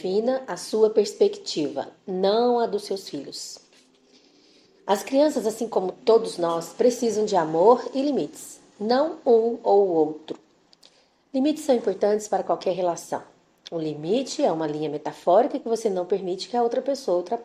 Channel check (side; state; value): both; identical; correlation 1.00